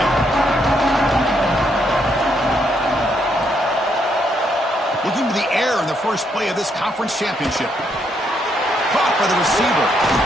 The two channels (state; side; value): normal; both; correlation 0.75